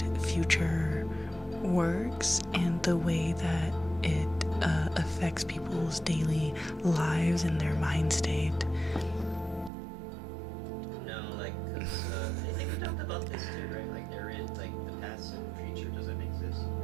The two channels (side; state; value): left; drops out; at 9.7 s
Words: future works, and the way that it affects people's daily lives and their mind state. No, like, cause, I think we talked about this too, right? Like, there is, like, the past and future doesn't exist.